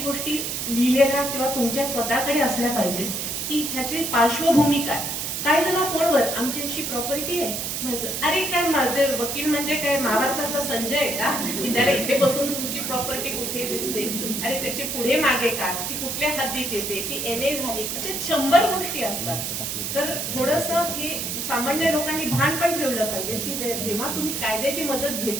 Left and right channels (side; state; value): right; noise; hiss, 3 dB below the sound